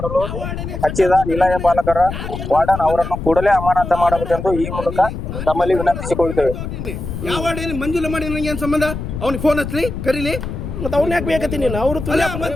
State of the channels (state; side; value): noise; left; rumble, 7 dB below the sound